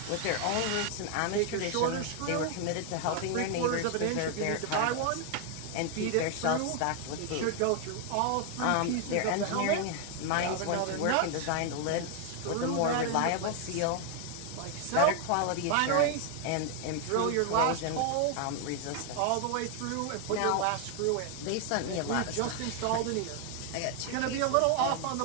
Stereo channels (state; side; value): different; both; correlation 0.00